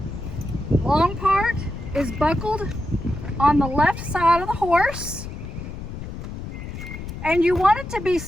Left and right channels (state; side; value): noise; left; rumble, 9 dB below the sound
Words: Long part is buckled on the left side of the horse, and you want it to be